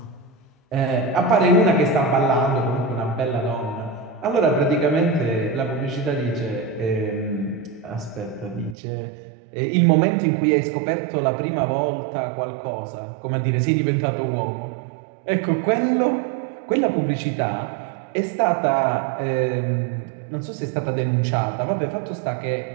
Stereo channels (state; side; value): drops out; left; at 8.8 s